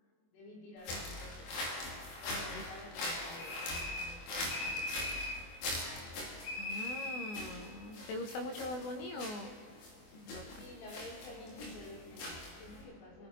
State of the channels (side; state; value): right; late; 24 ms